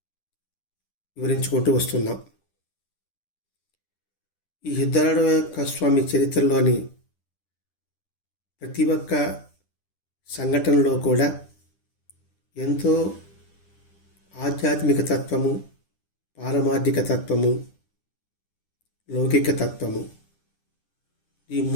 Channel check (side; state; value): right; late; 10 ms